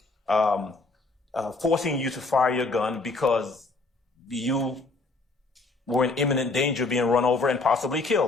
Forcing you to fire your gun because you were in imminent danger of being run over and possibly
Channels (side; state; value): right; quieter; 3.4 dB